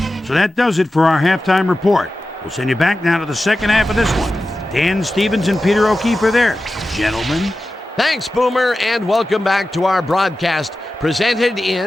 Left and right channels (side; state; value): both; normal; correlation 0.93